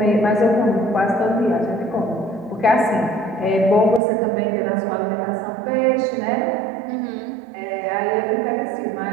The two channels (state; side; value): drops out; left; at 4.0 s